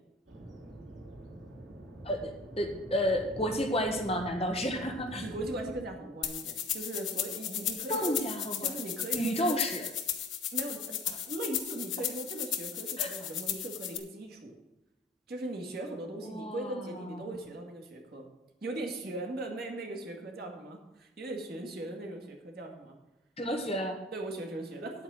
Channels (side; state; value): both; normal; correlation 0.46